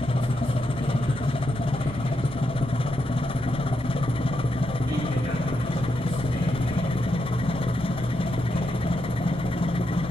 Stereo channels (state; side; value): noise; right; rumble, 14 dB below the sound